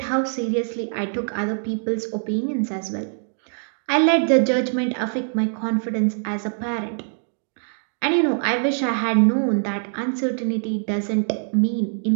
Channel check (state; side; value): silent; left; digital silence